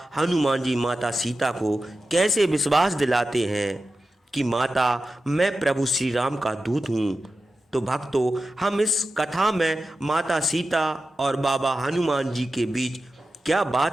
हनुमान जी माता सीता को कैसे विश्वास दिलाते हैं कि माता, मैं प्रभु श्री राम का दूत हूँ। तो भक्तों, हम इस कथा में माता सीता और बाबा हनुमान जी के बीच क्या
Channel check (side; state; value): both; normal; correlation 0.92